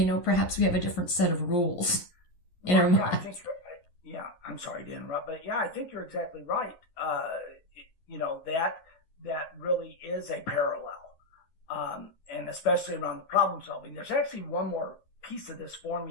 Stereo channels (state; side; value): late; right; 11 ms